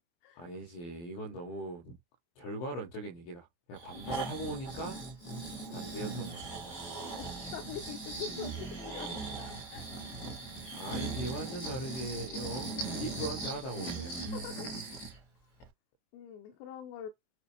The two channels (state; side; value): late; right; 23 ms